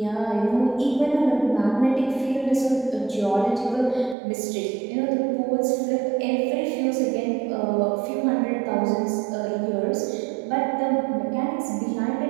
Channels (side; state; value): left; drops out; at 4.2 s